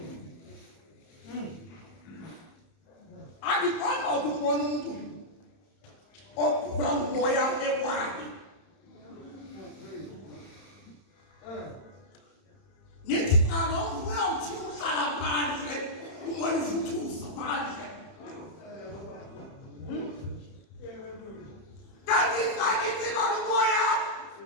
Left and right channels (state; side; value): late; right; 30 ms